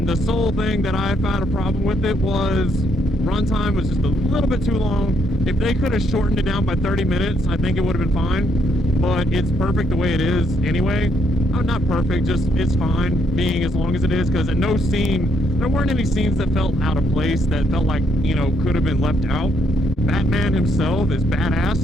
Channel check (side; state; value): both; normal; correlation 0.73